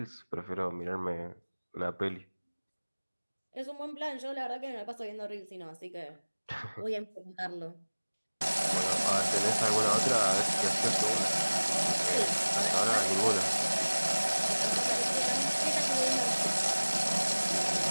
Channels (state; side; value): inverted; both; correlation -1.00